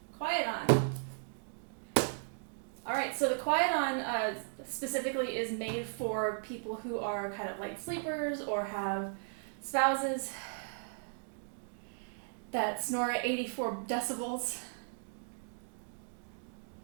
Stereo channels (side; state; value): left; silent; digital silence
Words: QuietOn. Alright, so the QuietOn specifically is made for people who are kind of light sleepers or have spouses that snore at 84 decibels,